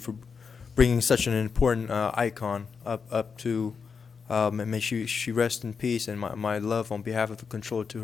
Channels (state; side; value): quieter; right; 5.7 dB